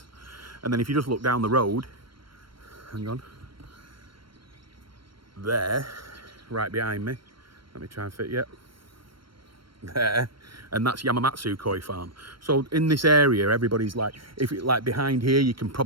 And then if you just look down the road, hang on, there, right behind me, let me try and fit you. There, and that's Yamamatsu Koi Farm. So in this area, everybody's like, behind here, you can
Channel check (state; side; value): late; left; 0.73 ms